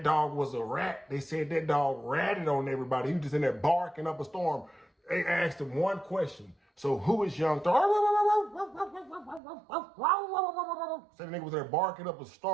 dog was a rat, they said that dog ratted on everybody. He was just in there barking up a storm. They asked him one question. So who is Young Thug? Said the nigga was there barking up a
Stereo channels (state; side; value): drops out; left; at 9.4 s